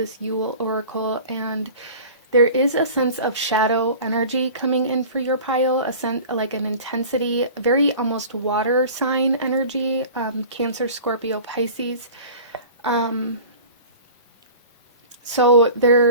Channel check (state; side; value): inverted; both; correlation -0.40